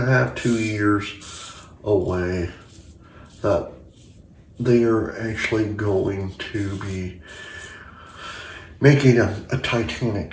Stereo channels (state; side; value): identical; both; correlation 1.00